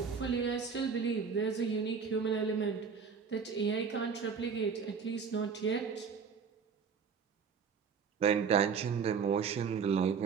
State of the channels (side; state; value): left; quieter; 6.0 dB